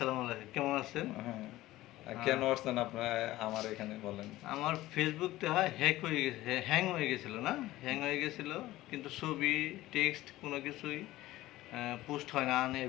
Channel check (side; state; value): right; quieter; 16.6 dB